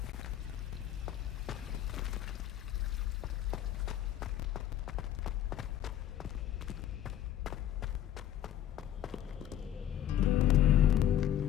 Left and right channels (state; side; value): quieter; right; 11.3 dB